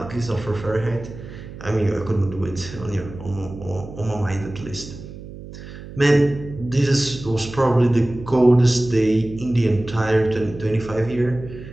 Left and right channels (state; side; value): noise; right; hum, 14 dB below the sound